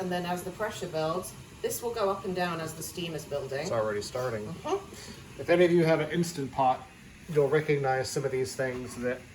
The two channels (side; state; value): both; identical; correlation 1.00